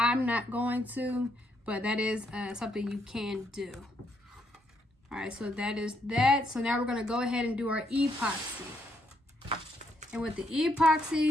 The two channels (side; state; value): both; normal; correlation 0.75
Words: not going to, but that is something you can do. All right, so that is that. So now we're gonna go ahead and do our epoxy. And with the